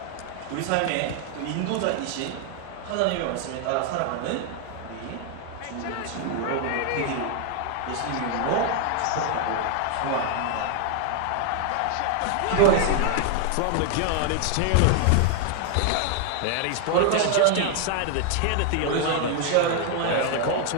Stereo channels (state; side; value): different; both; correlation 0.00